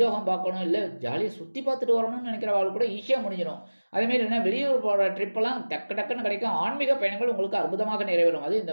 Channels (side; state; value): both; inverted; correlation -1.00